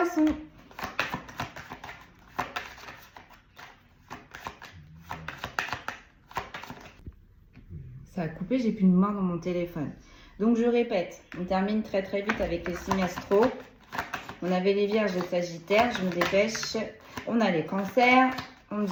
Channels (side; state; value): both; identical; correlation 1.00